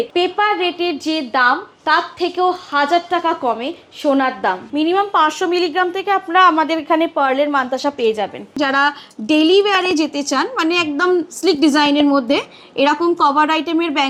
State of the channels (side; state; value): both; identical; correlation 1.00